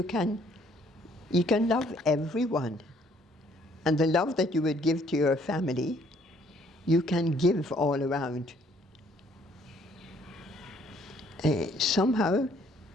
can love everyone, and the love that you would give to your family, you can give all around. Somehow,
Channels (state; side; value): normal; both; correlation 0.63